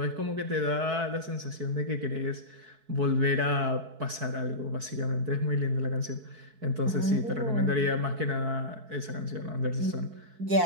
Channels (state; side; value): late; left; 4.6 ms